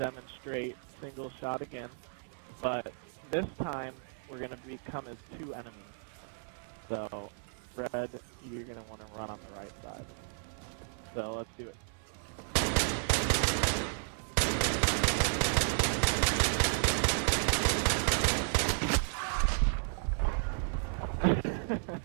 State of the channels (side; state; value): left; silent; 56 dB below the other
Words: single shot again, but this time we're going to become as 2 enemies. So, Red, you're going to want to run on the right side. So let's do it.